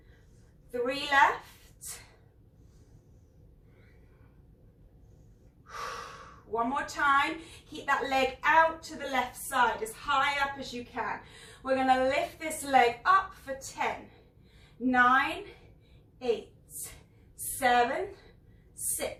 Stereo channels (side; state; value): both; identical; correlation 1.00